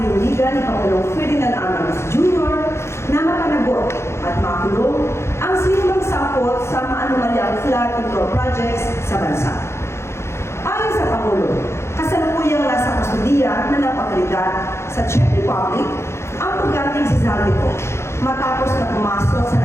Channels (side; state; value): right; late; 0.13 ms